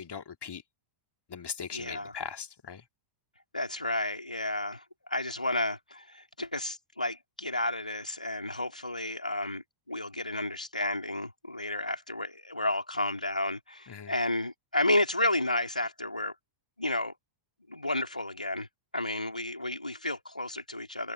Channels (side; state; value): both; inverted; correlation -0.70